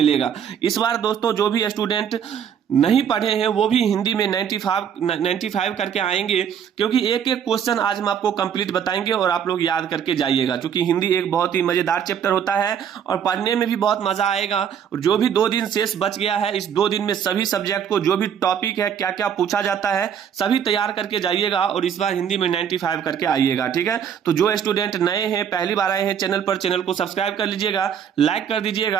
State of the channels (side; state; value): left; quieter; 8.4 dB